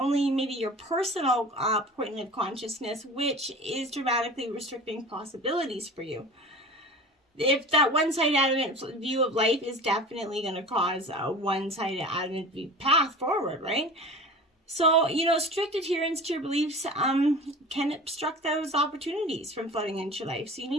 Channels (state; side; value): normal; both; correlation 0.37